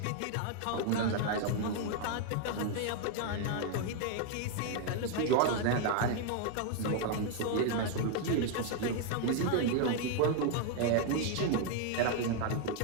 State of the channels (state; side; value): different; both; correlation 0.00